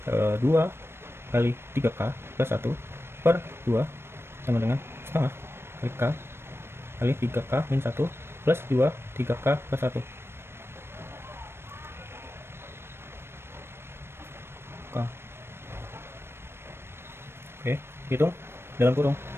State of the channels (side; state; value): left; late; 0.12 ms